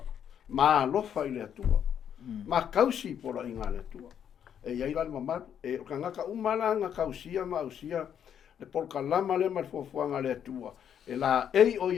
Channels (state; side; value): quieter; right; 8.8 dB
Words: Ma alofa I le atua. Ma kausi pora I ngā le atua. E iai la le mamalu. E ka ngaka umalanga kausia ma ausia, le polka lama le mal fuafuanga le atua. E la ei o